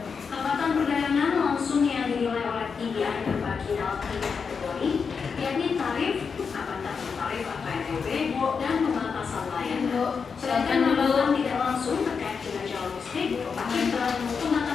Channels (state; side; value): quieter; right; 5.7 dB